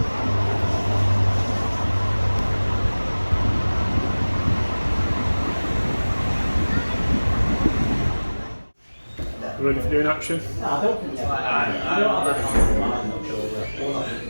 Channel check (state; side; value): inverted; both; correlation -1.00